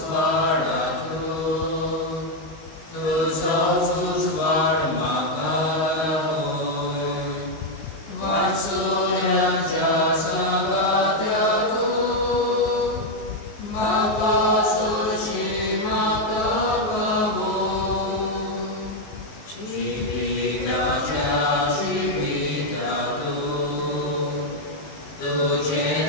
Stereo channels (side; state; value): right; late; 19 ms